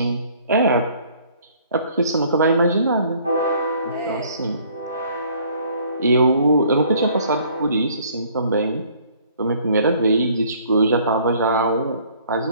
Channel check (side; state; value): both; inverted; correlation -0.58